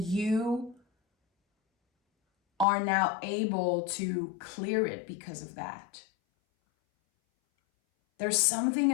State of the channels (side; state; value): right; drops out; at 2.7 s